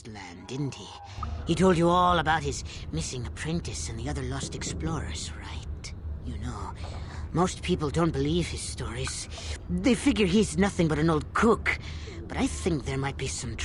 Land, didn't he? He told you all about his missing apprentice and the other lost explorers, right? You know, most people don't believe his stories. They figure he's nothing but an old cook. But I think there might be some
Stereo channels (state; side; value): identical; both; correlation 1.00